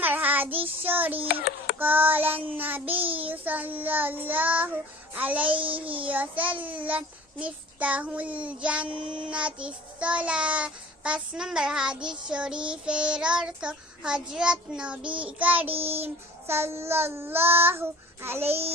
হাদিস শরীফ قال النبي صلى الله عليه وسلم مفتاح الجنة الصلاة 5 নম্বর হাদিস শরীফের অর্থ হযরত নবী করিম সাল্লাল্লাহু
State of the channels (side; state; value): both; normal; correlation 0.46